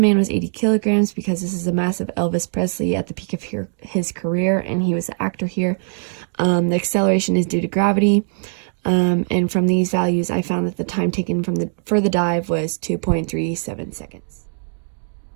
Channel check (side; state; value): left; silent; 65 dB below the other